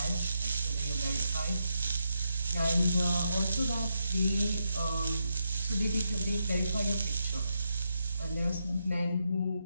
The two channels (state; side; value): inverted; both; correlation -0.82